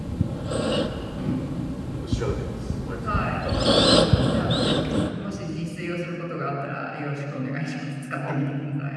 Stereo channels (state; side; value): identical; both; correlation 1.00